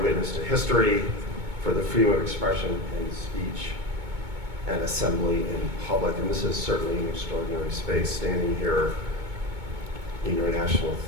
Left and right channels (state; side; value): late; left; 2.2 ms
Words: to history, for the freedom of expression and speech and assembly in public. And this is certainly an extraordinary space, standing here in your National